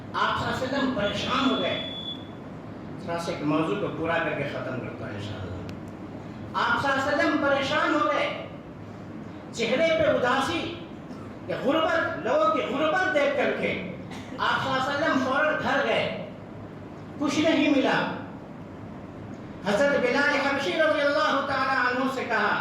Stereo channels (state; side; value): identical; both; correlation 1.00